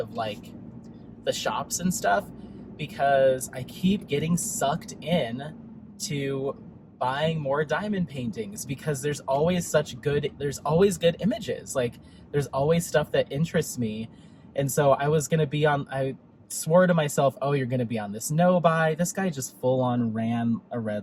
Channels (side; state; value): both; identical; correlation 1.00